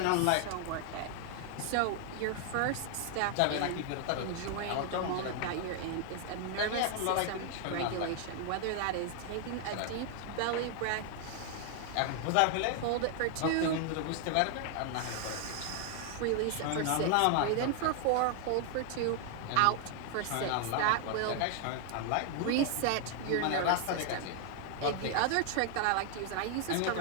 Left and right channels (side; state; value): both; different; correlation 0.00